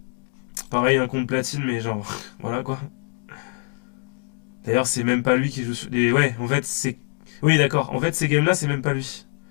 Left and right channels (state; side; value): quieter; right; 39.2 dB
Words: Pareil, un compte platine, mais genre, voilà quoi. D'ailleurs, c'est même pas lui qui joue sur... Ouais, en fait, c'est... Oui, d'accord. En fait, ces games là, c'est même pas lui.